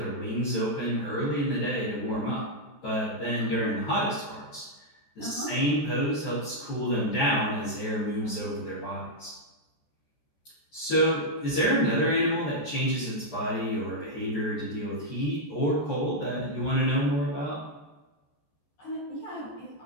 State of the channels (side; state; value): right; late; 14 ms